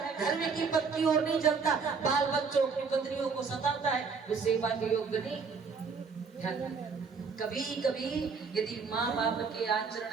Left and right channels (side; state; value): left; quieter; 5.2 dB